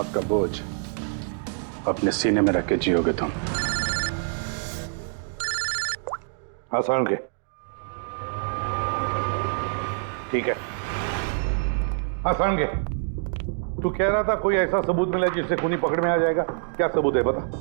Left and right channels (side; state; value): left; silent; digital silence